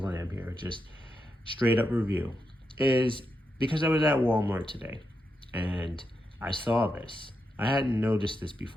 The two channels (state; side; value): normal; both; correlation 0.86